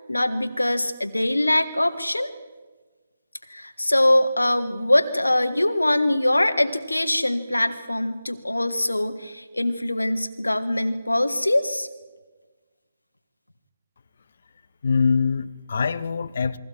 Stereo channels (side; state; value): both; inverted; correlation -0.97